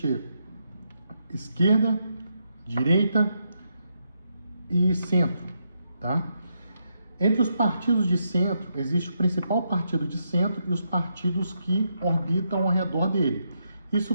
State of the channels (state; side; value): inverted; both; correlation -0.81